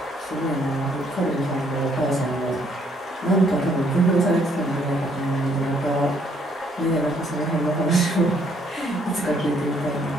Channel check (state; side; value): normal; both; correlation 0.67